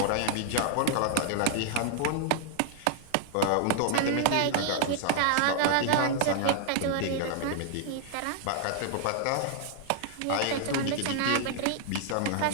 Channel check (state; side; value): different; both; correlation -0.01